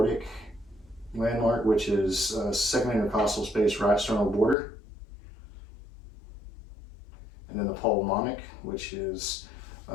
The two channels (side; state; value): right; drops out; at 4.5 s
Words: landmark, which is second intercostal space, right sternal border. and then the pulmonic, which is